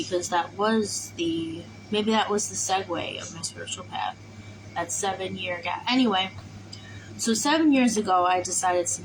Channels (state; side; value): identical; both; correlation 1.00